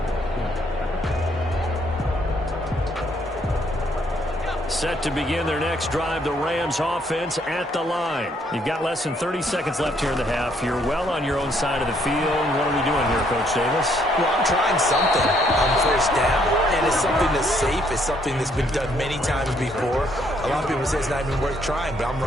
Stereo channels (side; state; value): both; normal; correlation 0.69